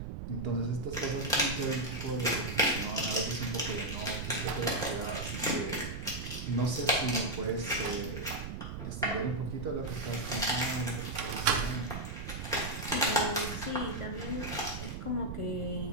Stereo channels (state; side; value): noise; right; rumble, 7 dB below the sound